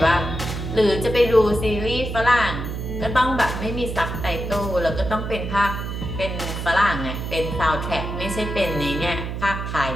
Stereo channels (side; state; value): right; noise; hum, 5 dB below the sound